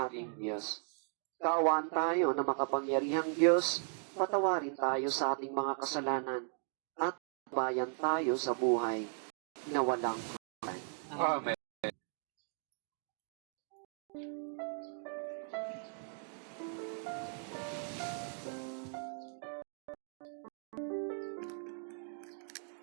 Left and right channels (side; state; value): left; silent; 53 dB below the other